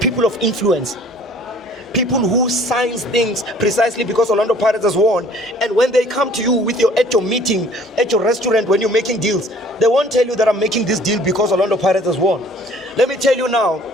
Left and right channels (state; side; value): normal; both; correlation 0.54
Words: of influence. People who signs things precisely because Orlando Pirates has won. And when they come to you at your meeting, at your restaurant, when you're making deals, they won't tell you that I'm making this deal because Orlando Pirates has won. Let me tell you now,